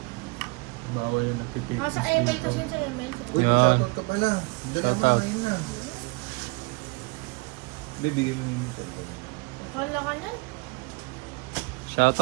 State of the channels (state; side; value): quieter; left; 27.5 dB